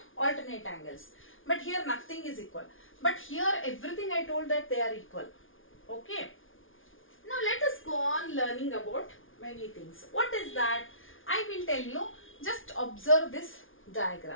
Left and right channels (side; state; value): right; late; 0.58 ms